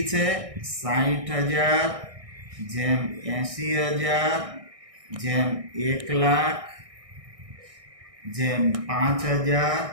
છે? 60,000 જેમ 80,000 જેમ 1,00,000 જેમ 5,000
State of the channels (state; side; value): late; left; 1.6 ms